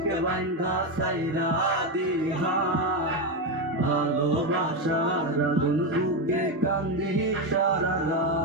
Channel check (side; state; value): both; normal; correlation 0.10